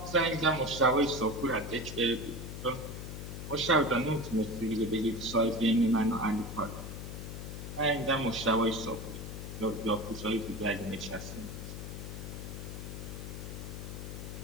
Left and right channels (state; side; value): noise; left; hum, 8 dB below the sound